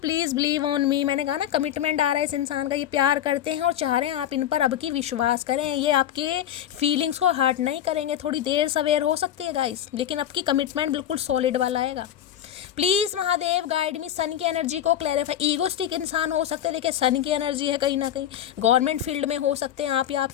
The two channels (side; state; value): right; quieter; 10.8 dB